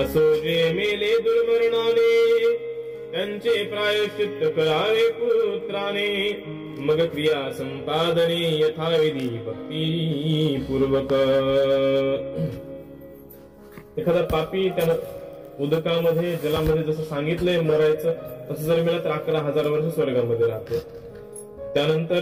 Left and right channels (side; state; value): both; identical; correlation 1.00